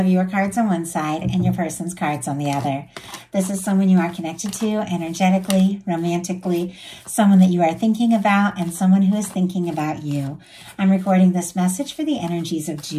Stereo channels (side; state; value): both; identical; correlation 1.00